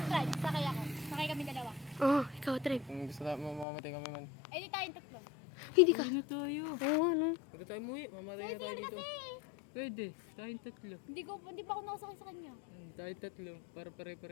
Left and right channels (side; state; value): right; drops out; at 3.7 s